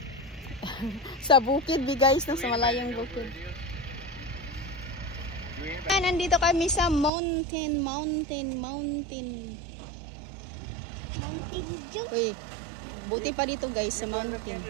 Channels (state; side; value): drops out; left; at 7.1 s